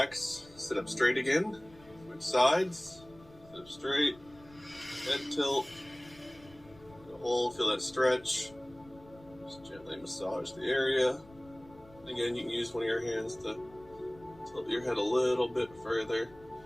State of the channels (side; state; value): left; noise; rumble, 24 dB below the sound